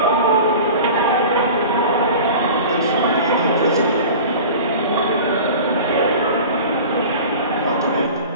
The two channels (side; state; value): both; inverted; correlation -0.37